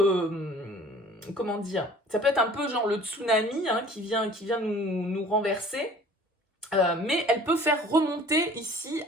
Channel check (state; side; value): normal; both; correlation 0.48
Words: comment dire, ça peut être un peu genre le tsunami, hein, qui vient nous renverser. Mais elle peut faire remonter ici